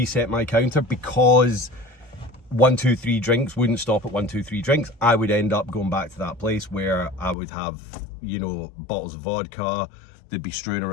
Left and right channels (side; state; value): right; drops out; at 7.4 s